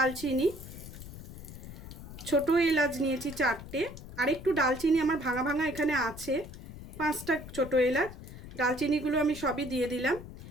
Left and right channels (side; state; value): left; noise; rumble, 13 dB below the sound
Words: ছোট এলাচ নিয়েছি 4টে, আর একটু ডালচিনি আমার ভাঙা ভাঙা এখানে আছে, 5টা ছোট এলাচ। ডালচিনিগুলো আমি সবই দিয়ে দিলাম।